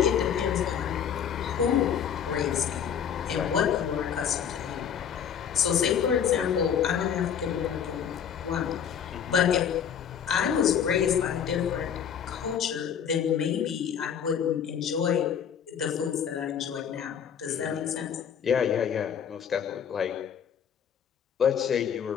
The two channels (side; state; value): right; quieter; 8.2 dB